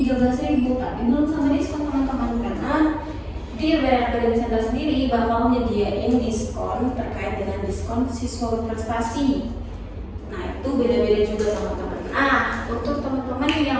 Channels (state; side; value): identical; both; correlation 1.00